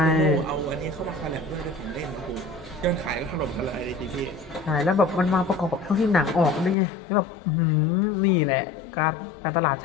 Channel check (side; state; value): right; drops out; at 6.8 s